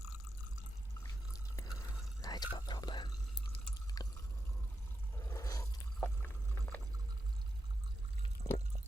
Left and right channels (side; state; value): both; normal; correlation 0.87